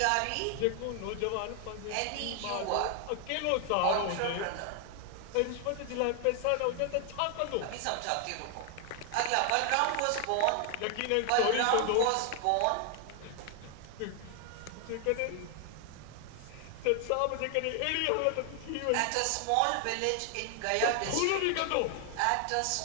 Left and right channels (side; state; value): both; different; correlation 0.00